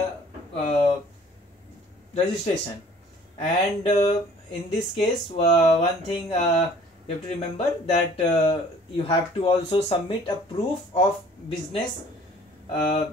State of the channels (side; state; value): both; normal; correlation 0.53